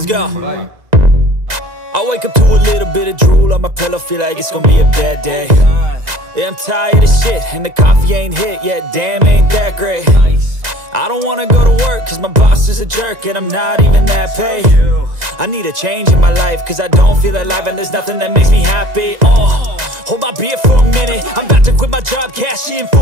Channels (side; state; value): left; late; 2.0 ms